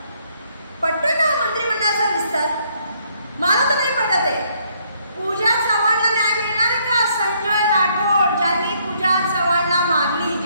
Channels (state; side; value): inverted; both; correlation -0.69